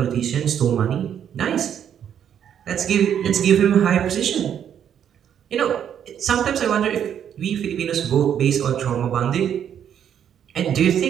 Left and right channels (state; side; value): quieter; left; 9.1 dB